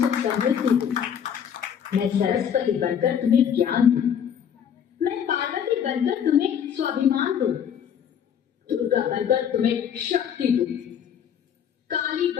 समृद्धि दूं, मैं सरस्वती बनकर तुम्हें ज्ञान दूं, मैं पार्वती बनकर तुम्हें स्वाभिमान दूं, दुर्गा बनकर तुम्हें शक्ति दूं, काली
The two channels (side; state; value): right; quieter; 8.4 dB